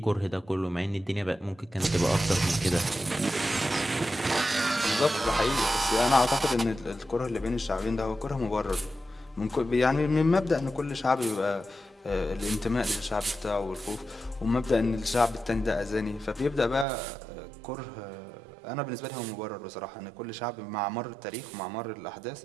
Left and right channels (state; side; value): drops out; left; at 16.9 s